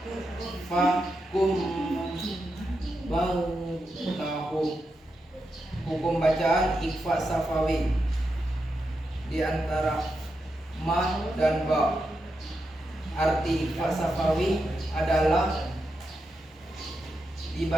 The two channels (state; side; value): normal; both; correlation 0.86